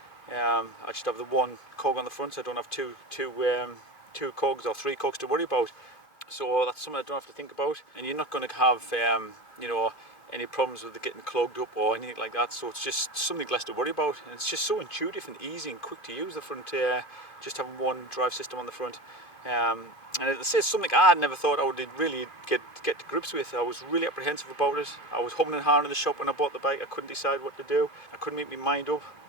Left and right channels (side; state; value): right; late; 2.5 ms